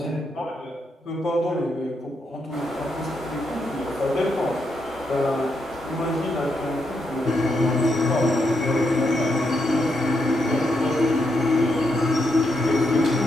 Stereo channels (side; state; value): both; normal; correlation 0.80